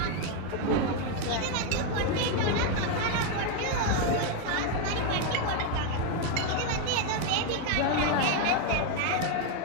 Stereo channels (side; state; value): both; different; correlation 0.01